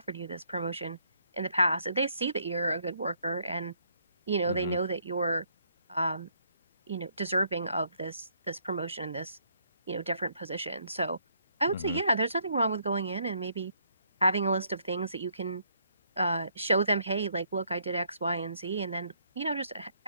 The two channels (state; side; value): inverted; both; correlation -0.69